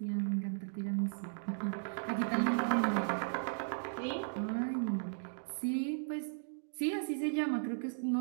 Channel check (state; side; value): silent; left; digital silence